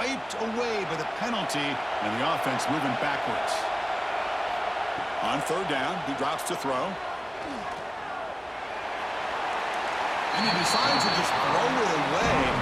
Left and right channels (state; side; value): identical; both; correlation 1.00